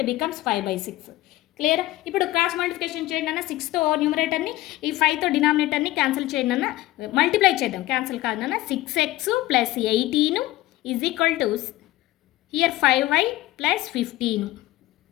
becomes 5/6. Clear? ఇప్పుడు క్రాస్ మల్టిప్లికేషన్ చేయండి అన్న. 6తో న్యూమరేటర్ని ఈ 5తో డినామినేటర్ని క్యాన్సిల్ చేయండి అన్న. మల్టిప్లై చేద్దాం, క్యాన్సిల్ కాదన్న. 6x plus 18 is equal to here 5y plus 15.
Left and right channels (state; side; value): quieter; right; 16.8 dB